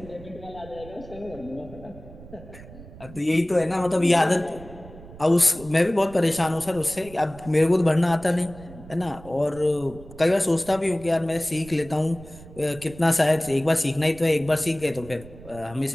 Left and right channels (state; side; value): noise; right; rumble, 18 dB below the sound